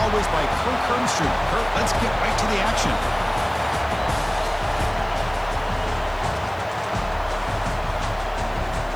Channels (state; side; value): noise; right; hiss, 27 dB below the sound